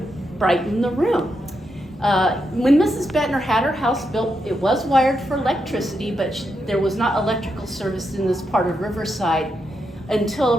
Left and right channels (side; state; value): both; normal; correlation 0.83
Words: brighten the room. When Mrs. Bettner had her house built, it was wired for electricity, but there was not electrical service in this part of Riverside until